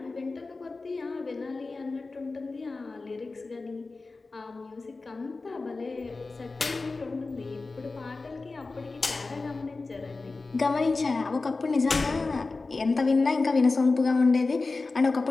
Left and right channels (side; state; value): right; quieter; 3.7 dB